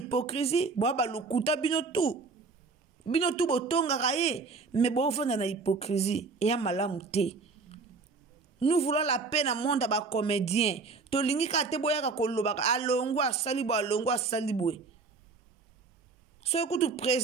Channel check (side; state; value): left; quieter; 4.3 dB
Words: ba lokuta bino tu. Bino tu botonga kaye, mais bovanda na hypocrisie et ya malamu te. Nous voulons la paix dans le monde à comédien. To lingi ka te boya ka kolobaka alongo asalibo alongo asalibo. So écoute